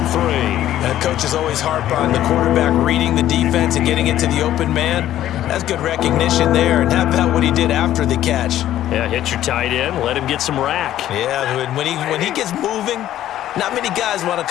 3. And coaches always harp on the quarterback reading the defense and getting it to the open man. That's good recognition there. And how about what he did after the catch? Yeah, hit your tight end, let him get some rack. Yeah, when he gets moving, not many guys want to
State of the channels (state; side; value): quieter; right; 12.7 dB